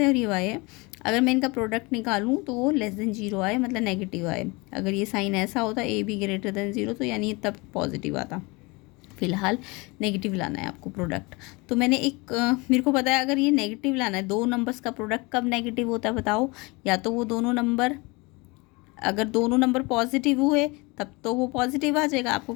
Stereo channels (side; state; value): right; quieter; 26.0 dB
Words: और ये वाई है। अगर मैं इनका प्रोडक्ट निकालूँ तो वो लेस देन जीरो आए, मतलब नेगेटिव आए। अगर ये साइन ऐसा होता A be greater than zero तो यानी तब पॉजिटिव आता। फिलहाल नेगेटिव लाना है आपको प्रोडक्ट। तो मैंने एक मेरे को पता है अगर ये नेगेटिव लाना है, दो नंबर्स का प्रोडक्ट कब नेगेटिव होता है बताओ, या तो वो दोनों नंबर, अगर दोनों नंबर पॉजिटिव हुए तब तो वो पॉजिटिव आ जाएगा। आपको